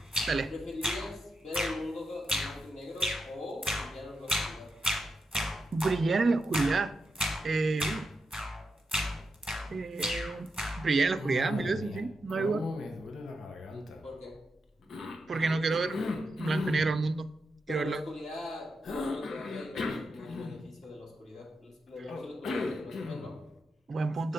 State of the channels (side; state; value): both; normal; correlation 0.86